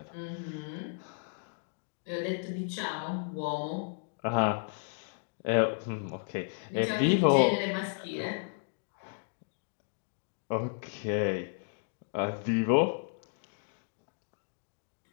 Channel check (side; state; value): right; silent; digital silence